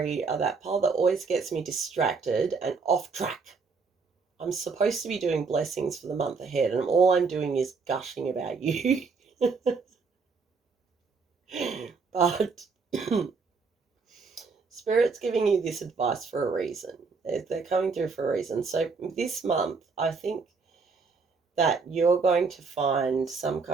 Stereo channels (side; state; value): left; quieter; 4.8 dB